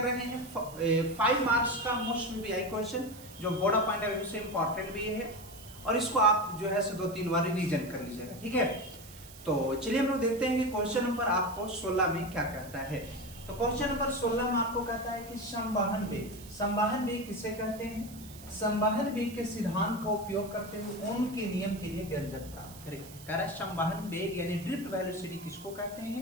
रहे हैं 5 मार्क्स का मोस्ट वीआई क्वेश्चन, जो board of point of view से इंपॉर्टेंट भी है, और इसको आप जो है 2-3 बार रिवीजन कर लीजिएगा, ठीक है। तो चलिए हम लोग देखते हैं कि क्वेश्चन नंबर आपको 16 में क्या कहता है। तो क्वेश्चन नंबर 16 में आपको कहता है कि संवहन वेग। संवहन वेग किसे कहते हैं? संवहन वेग के सिद्धांत का उपयोग करते हुए ओम के नियम के लिए व्यंजक प्राप्त करें। कह रहा है संवहन वेग यानी ड्रिफ्ट वेलोसिटी किसको कहते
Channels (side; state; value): right; noise; hiss, 18 dB below the sound